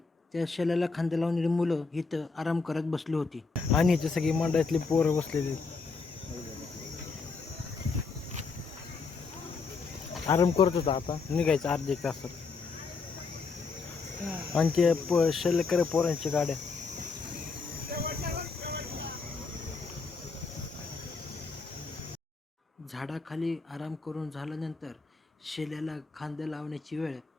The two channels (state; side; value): quieter; right; 4.5 dB